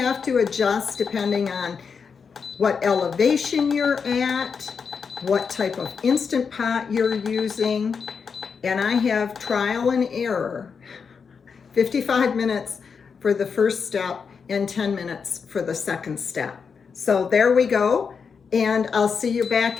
to adjust depending on what elevation you're at, what type of Instant Pot you're using, and I have trial and error. 55 minutes for the first step and 10 minutes for the second step. So there we go, and I'll see you back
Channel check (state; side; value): quieter; right; 5.9 dB